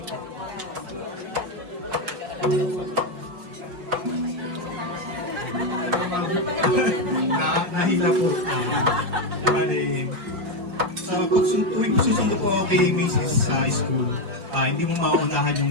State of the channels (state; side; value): late; left; 5.5 ms